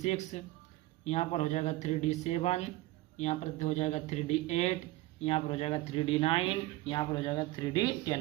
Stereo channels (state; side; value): quieter; left; 18.1 dB